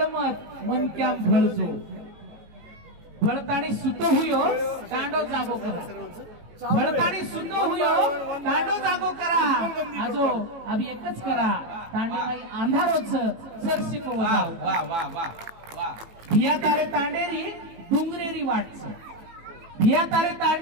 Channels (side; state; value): left; late; 18 ms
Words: मन क्या भळजो भळताणी सुतो हुयो तांडो जागो करा भळताणी सुतो हुयो तांडो जागो करा आजो अभी एकच करा तांडे माई अंधारोच सरसी को वाह वजाळो वाह वाह वाह वाह भिया तारे तांडेरी डुंगरेरी वाटच भिया तारे